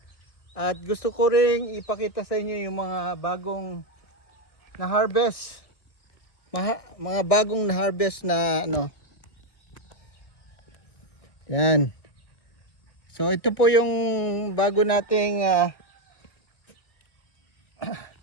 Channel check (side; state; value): right; late; 1.6 ms